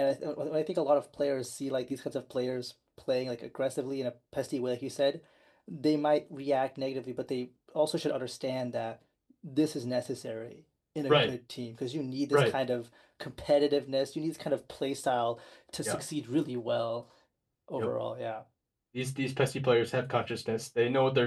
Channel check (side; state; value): both; identical; correlation 1.00